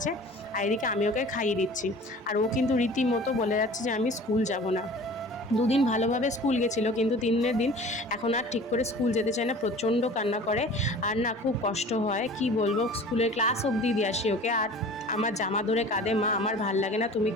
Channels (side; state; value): both; normal; correlation 0.43